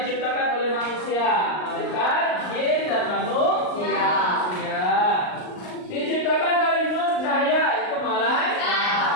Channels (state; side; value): late; right; 39 ms